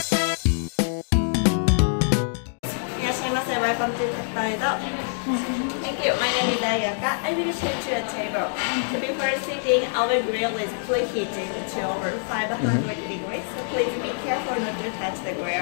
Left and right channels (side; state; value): right; silent; digital silence